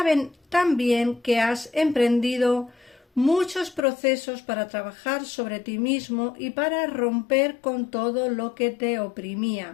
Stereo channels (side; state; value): right; drops out; at 3.8 s